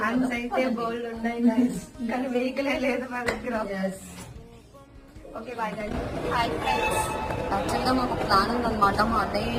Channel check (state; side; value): identical; both; correlation 1.00